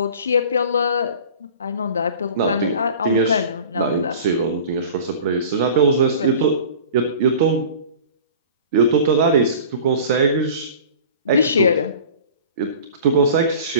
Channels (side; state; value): both; inverted; correlation -0.42